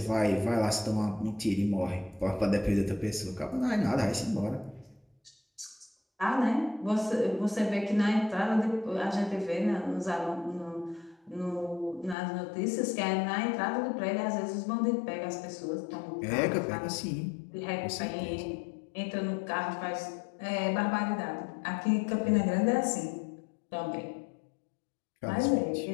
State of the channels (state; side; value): drops out; right; at 12.2 s